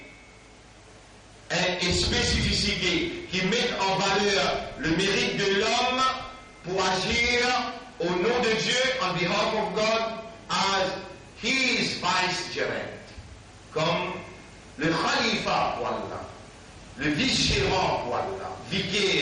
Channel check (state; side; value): identical; both; correlation 1.00